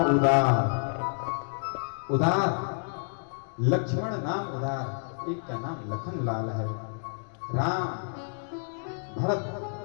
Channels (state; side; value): silent; right; digital silence